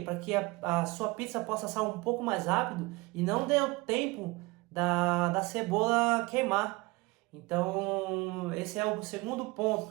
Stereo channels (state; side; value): quieter; left; 23.6 dB